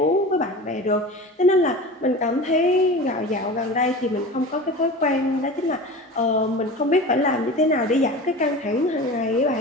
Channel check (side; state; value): both; normal; correlation 0.33